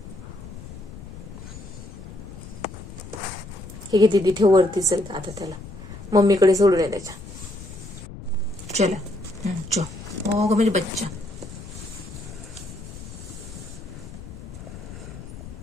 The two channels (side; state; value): left; noise; rumble, 13 dB below the sound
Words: हे घे दीदी, ठेव वरती. चल आता त्याला मम्मीकडे सोडून ये त्याच्या. चला चो. ओ ग म्हणजे बच्चा.